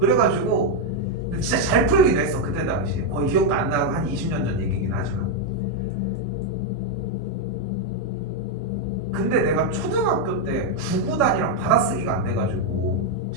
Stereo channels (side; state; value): both; normal; correlation 0.01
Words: 진짜 잘 풀기도 했어 그때 당시에. 거의 기억도 안 나고 한 20년 전 얘기긴 하지만. 근데 내가 초등학교 때 구구단이랑 받아쓰기가 안 돼가지고